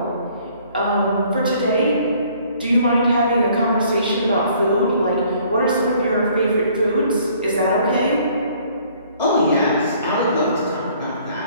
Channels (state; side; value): inverted; both; correlation -0.59